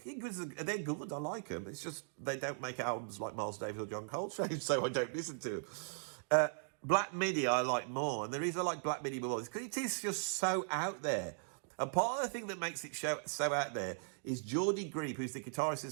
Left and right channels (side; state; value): left; silent; digital silence